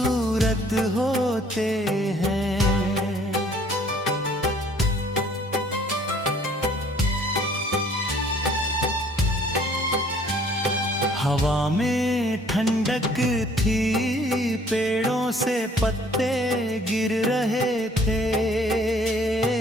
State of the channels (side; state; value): both; normal; correlation 0.58